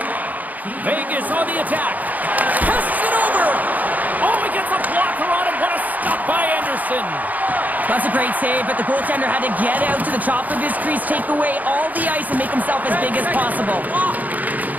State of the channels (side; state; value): left; late; 0.080 ms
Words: Vegas on the attack. Passes it over. Oh, he gets a blocker on him. What a stop by Anderson. That's a great save, but the goaltender had to get out to the top of his crease, take away all the ice, and make himself as big as possible.